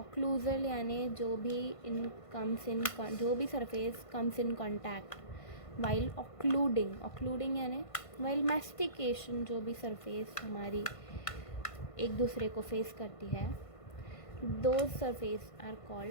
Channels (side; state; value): right; late; 1.5 ms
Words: यानी जो भी surface comes in contact while occluding यानी वाइल मैस्टिकेशन. जो भी सरफेस हमारी एक दूसरे को फेस करती है, those surface are